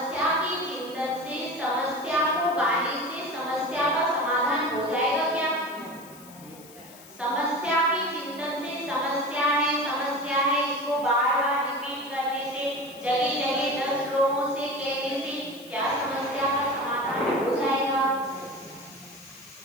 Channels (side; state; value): left; noise; hiss, 21 dB below the sound